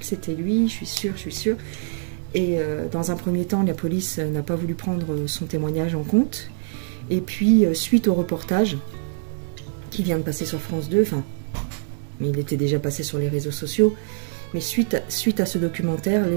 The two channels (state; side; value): silent; left; 63 dB below the other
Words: c'était lui, je suis sûre. Et dans un premier temps, la police n'a pas voulu prendre son témoignage en compte. Et puis suite au reportage qui vient de passer sur France 2, mais il était déjà passé sur les réseaux sociaux. Mais suite à ce documentaire,